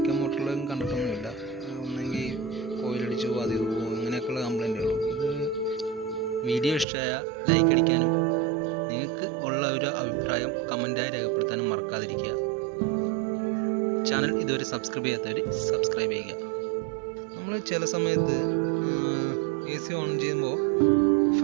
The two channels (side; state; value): left; drops out; at 6.9 s